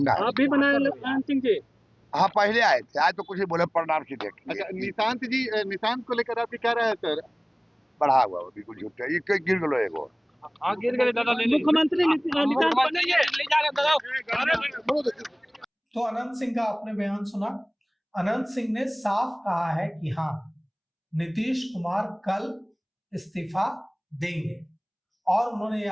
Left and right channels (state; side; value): identical; both; correlation 1.00